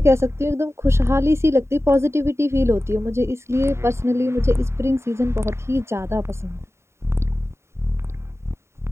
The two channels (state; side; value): late; left; 0.13 ms